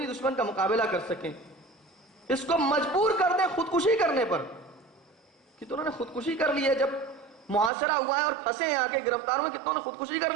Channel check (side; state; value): left; drops out; at 7.7 s